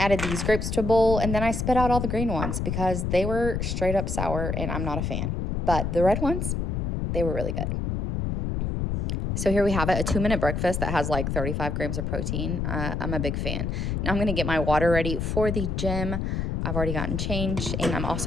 these grapes to a bowl, and then I spit out all the green ones because they were straight up sour, and I'm not a fan. But the red ones, they were really good. So here we have it, a 2-minute breakfast that has like 35 grams of protein. I'm a big fan. Now I'm going to get my water ready for the gym. I've already gotten changed, and I'm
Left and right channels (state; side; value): noise; left; rumble, 1 dB below the sound